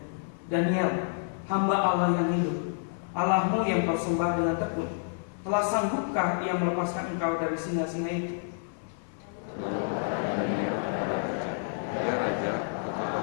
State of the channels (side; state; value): right; silent; 57 dB below the other